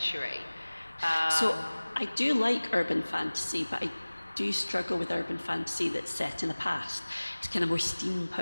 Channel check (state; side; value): inverted; both; correlation -1.00